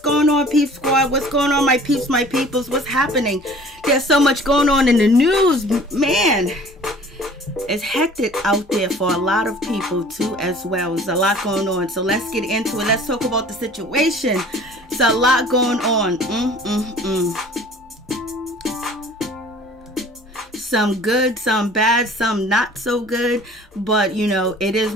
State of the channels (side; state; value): both; normal; correlation 0.49